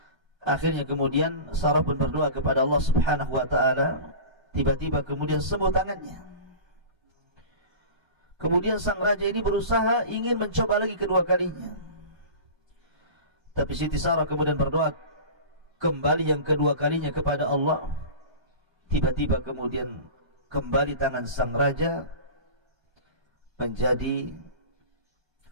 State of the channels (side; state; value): left; late; 1.3 ms